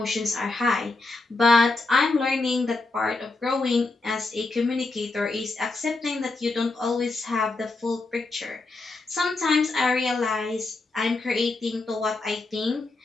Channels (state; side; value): quieter; right; 3.3 dB